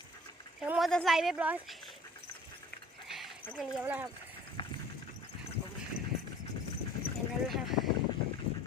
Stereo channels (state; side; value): normal; both; correlation 0.49